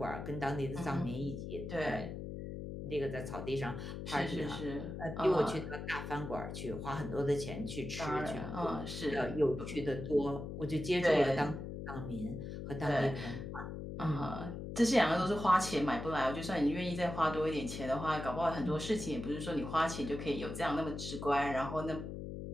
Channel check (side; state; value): left; noise; hum, 7 dB below the sound